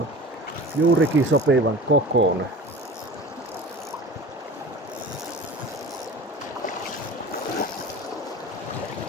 juurikin sopivan kokoinen.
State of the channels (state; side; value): normal; both; correlation 0.37